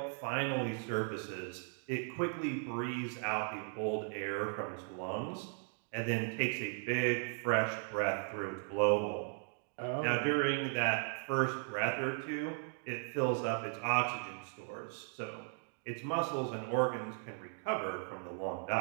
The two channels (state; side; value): silent; left; 53 dB below the other